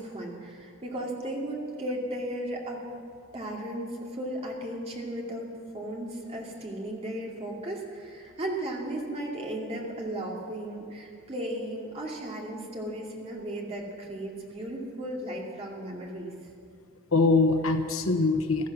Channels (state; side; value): normal; both; correlation 0.39